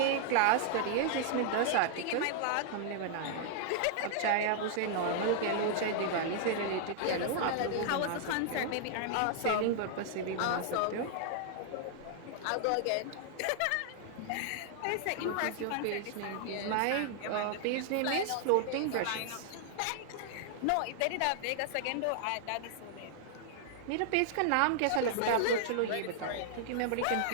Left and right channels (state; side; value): different; both; correlation -0.01